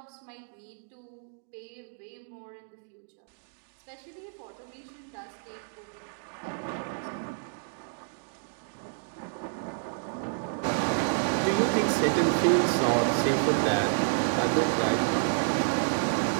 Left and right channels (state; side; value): silent; left; digital silence